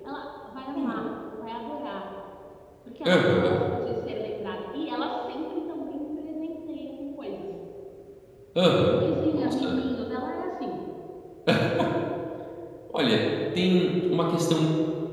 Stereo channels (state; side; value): identical; both; correlation 1.00